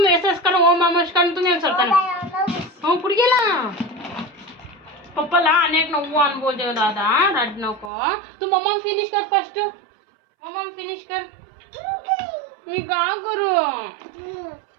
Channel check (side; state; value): left; drops out; at 7.9 s